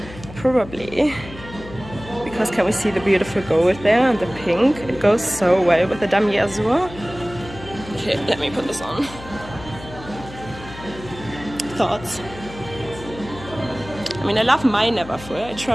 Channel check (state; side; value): noise; left; hum, 15 dB below the sound